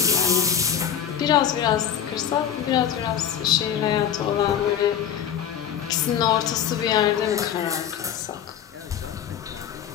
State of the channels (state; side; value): quieter; right; 9.0 dB